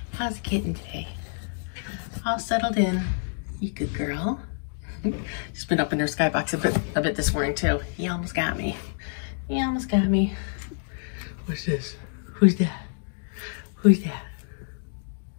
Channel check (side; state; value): right; silent; digital silence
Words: How's Kitten today? All settled in. You good girl. She's been up in her skybox a bit this morning too. He almost got me. He almost got me. What's this? Who's that? Who's that?